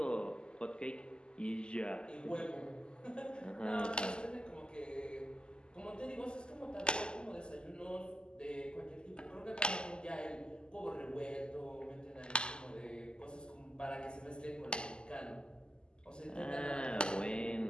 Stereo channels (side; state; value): right; late; 0.048 ms